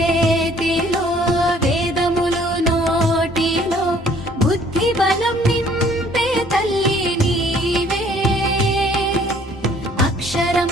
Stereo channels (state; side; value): normal; both; correlation 0.58